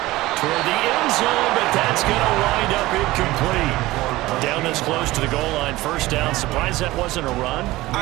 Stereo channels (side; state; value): left; quieter; 18.3 dB